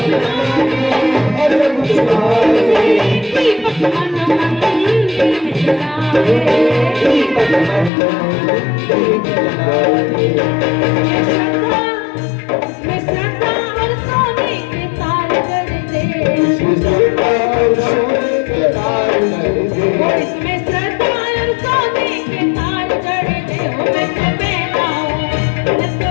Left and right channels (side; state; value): right; drops out; at 7.9 s